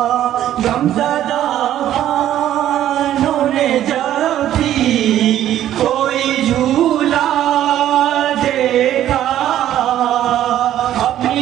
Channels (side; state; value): left; quieter; 12.0 dB